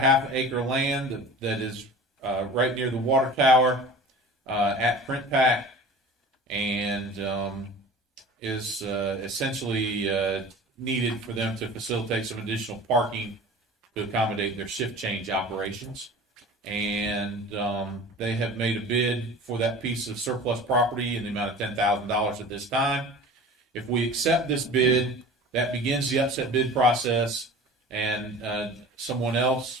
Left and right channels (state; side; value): normal; both; correlation 0.39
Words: acre land that is right near the water tower at Print Pack, and is essentially needed for them to facilitate some additional parking to accommodate their shift change operations. And they have made a bid for that piece of surplus property in the amount of $10,000 at this time. If we accept this bid, that begins the upset bid process, and someone